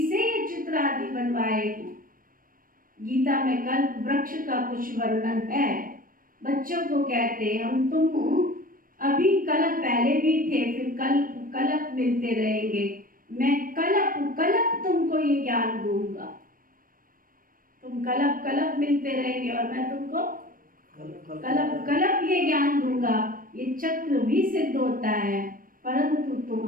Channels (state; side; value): late; left; 0.41 ms